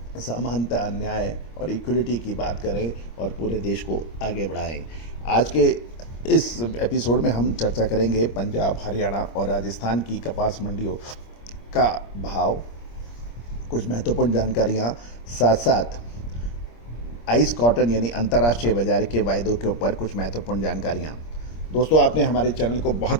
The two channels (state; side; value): late; right; 26 ms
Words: समानता, न्याय और इक्वलिटी की बात करें और पूरे देश को आगे बढ़ाएं। आज के इस एपिसोड में हम चर्चा करेंगे पंजाब, हरियाणा और राजस्थान की कपास मंडियों का भाव, कुछ महत्वपूर्ण जानकारियां, साथ साथ आइस कॉटन यानी अंतर्राष्ट्रीय बाजार के वायदों के ऊपर कुछ महत्वपूर्ण जानकारियां। दोस्तों आपने हमारे चैनल को